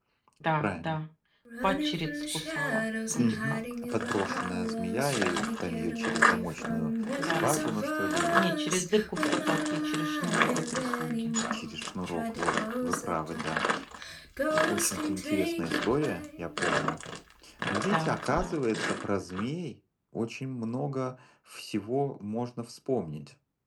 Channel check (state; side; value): identical; both; correlation 1.00